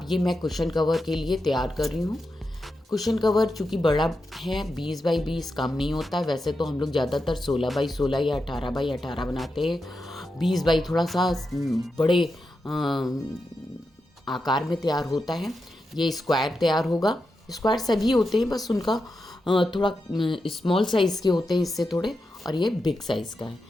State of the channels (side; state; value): both; normal; correlation 0.88